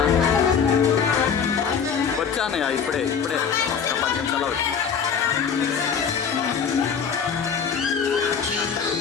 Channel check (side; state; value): right; quieter; 6.8 dB